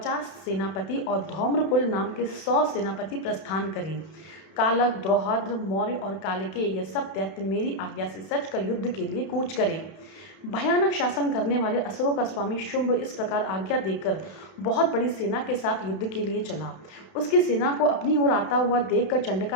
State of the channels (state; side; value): late; right; 31 ms